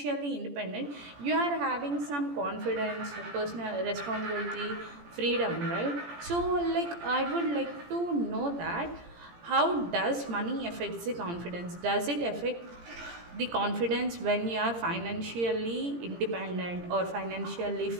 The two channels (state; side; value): late; left; 17 ms